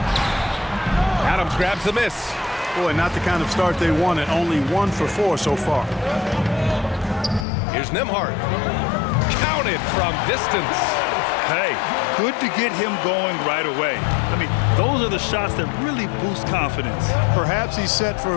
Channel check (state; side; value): drops out; right; at 7.5 s